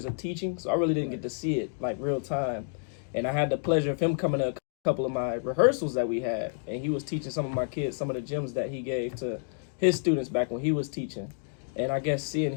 of teaching, so I really didn't get to see it like real time. And I had the pleasure of him coming to a couple of my rehearsals that we had, and he was teaching some of my kids some of the gems that he gave to his students back when he was teaching. And I guess seeing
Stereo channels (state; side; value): silent; right; digital silence